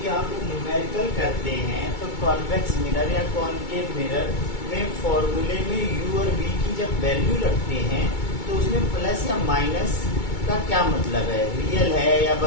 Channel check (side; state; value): right; late; 2.2 ms